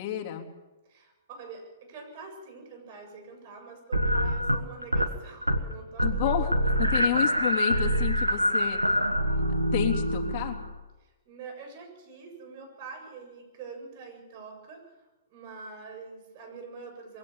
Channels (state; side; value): inverted; both; correlation -0.68